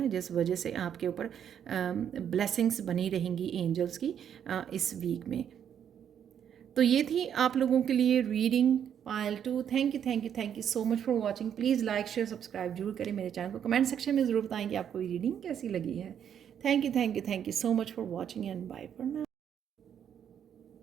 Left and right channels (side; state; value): left; quieter; 8.9 dB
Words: जिस वजह से आपके ऊपर ब्लेसिंग्स बनी रहेंगी एंजल्स की इस वीक में। तो ये थी आप लोगों के लिए reading Payal 2। Thank you so much for watching. Please like share subscribe जरूर करें मेरे चैनल को। कमेंट सेक्शन में ज़रूर बताएं कि आपको ये रीडिंग कैसी लगी है। Thank you so much for watching and bye for now.